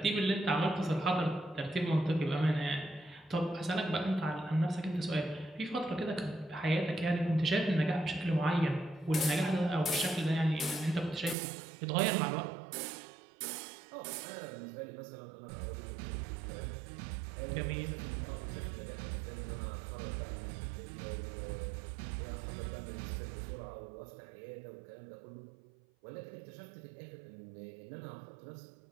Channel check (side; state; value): left; drops out; at 11.4 s